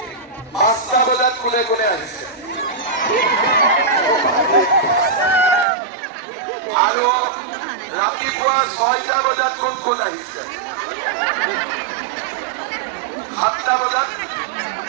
5টা বজাত কোনে কোনে আহিছে? আৰু ৰাতিপুৱা 6টা বজাত কোন কোন আহিছে? 7টা বজাত?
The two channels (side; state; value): left; drops out; at 5.7 s